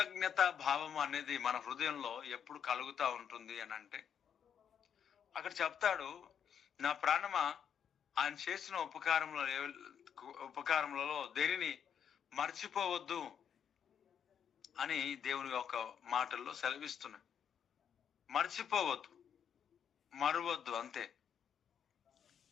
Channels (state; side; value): quieter; right; 8.2 dB